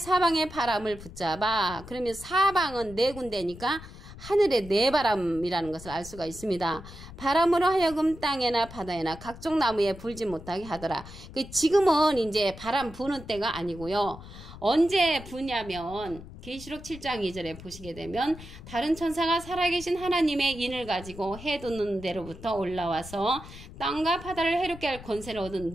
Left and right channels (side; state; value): left; noise; rumble, 15 dB below the sound